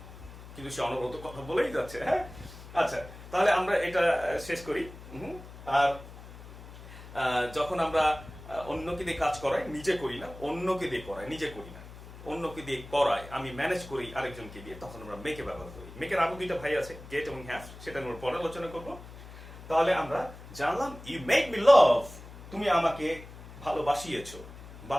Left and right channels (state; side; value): noise; left; hum, 16 dB below the sound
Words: কিন্তু সে অনবরত কথা বলেই যাচ্ছে। হ্যাঁ, আচ্ছা তাহলে আমরা এটা শেষ করি। আর যখন আমরা অন্যকে দিয়ে কাজ করাই, নিজে করি না, অন্যকে দিয়ে করাই, নিজে করি না, অন্যকে দিয়ে করাই, আমি ম্যানেজ করি আরেকজনকে দিয়ে, তখন আমরা মেকে ব্যবহার করি। মেকের আরো দুইটা ভাই আছে, গেট এবং হ্যাভ, সেটা আমরা পরে আলোচনা করব। তাহলে আমরা জানলাম ইউ মেড মি লাভ, তুমি আমাকে ভালোবাসিয়েছো,